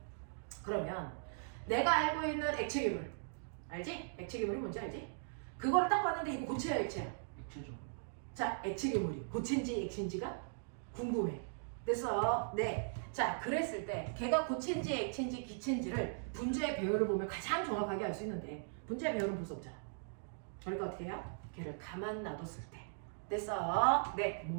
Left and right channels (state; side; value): silent; left; digital silence